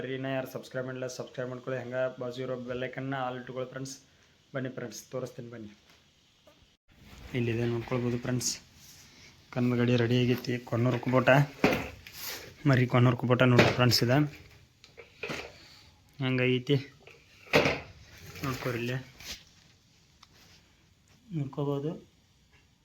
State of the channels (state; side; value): identical; both; correlation 1.00